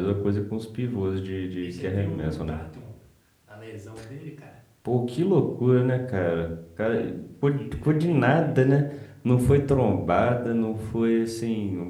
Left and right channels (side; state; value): both; identical; correlation 1.00